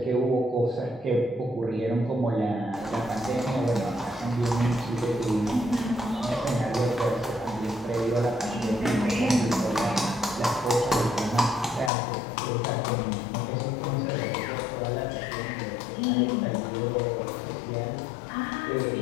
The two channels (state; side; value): drops out; right; at 11.9 s